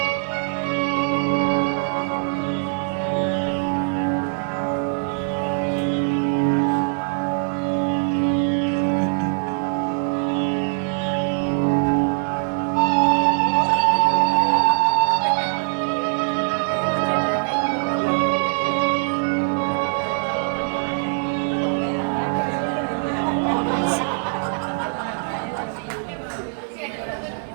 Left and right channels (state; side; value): silent; left; 63 dB below the other